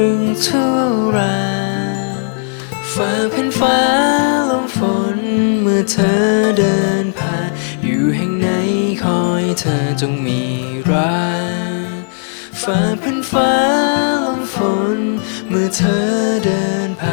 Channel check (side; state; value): right; silent; digital silence